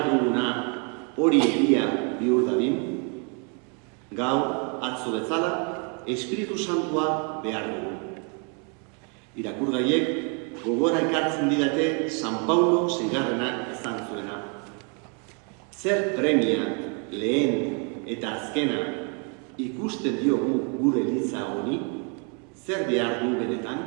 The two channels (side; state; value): left; quieter; 37.4 dB